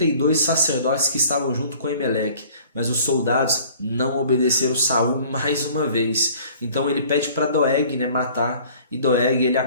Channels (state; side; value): inverted; both; correlation -0.51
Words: sacerdotes que estavam junto com Aimeleque. Mas os soldados não obedeceram Saul mais uma vez. Então ele pede para Doeg, né, matar, e Doeg ele